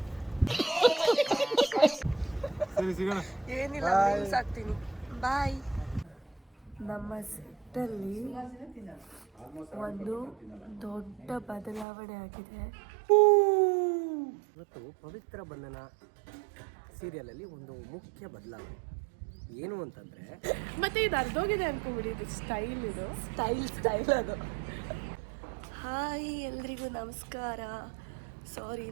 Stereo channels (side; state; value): left; drops out; at 11.9 s